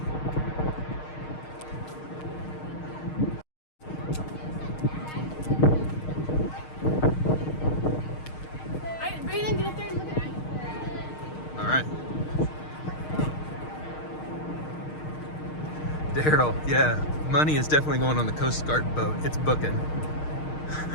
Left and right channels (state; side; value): late; right; 6.5 ms